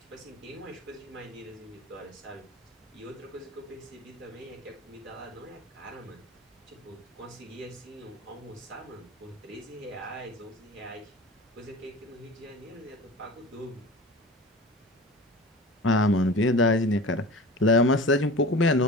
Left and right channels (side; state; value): both; normal; correlation 0.36